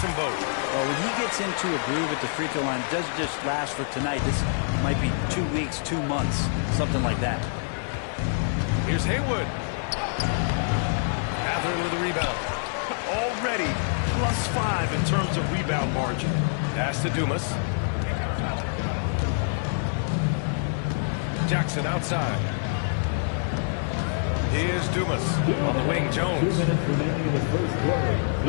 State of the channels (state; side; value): silent; right; 61 dB below the other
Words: them both. Well, when he gets into a groove at the free throw line, it doesn't just last for tonight. This might be 2 weeks, 2 months, something like that. Here's Haywood. Matherin with a rebound. Already +5 in terms of rebound margin. Pass to Dumas. Jackson outside. Here's Dumas. On the wing, Jones. 2 minutes remaining in the first quarter.